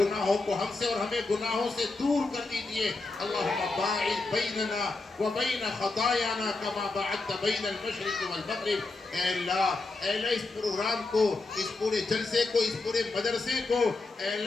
को हमसे और हमें गुनाहों से दूर कर दीजिए। अल्लाहुम्मा बाइद बैनना व बैन खतायाना कमा बअदत बैन अल-मशरिक़ वल मग़रिब। ऐ अल्लाह इस प्रोग्राम को, इस पूरे जलसे को, इस पूरे मदरसे को, ऐ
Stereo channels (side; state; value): right; quieter; 3.5 dB